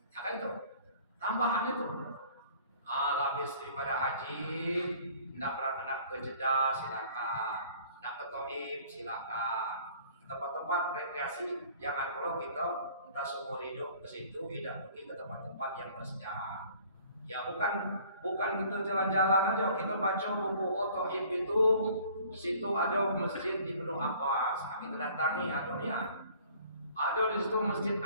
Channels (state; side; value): inverted; both; correlation -0.53